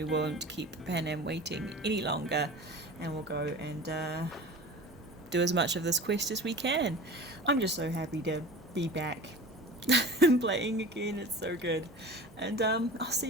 won't keep Panam waiting any longer. And we'll go and do as much of this quest as we can. I'm just so happy to be back and playing again. It's so good. And I'll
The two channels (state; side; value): normal; both; correlation 0.37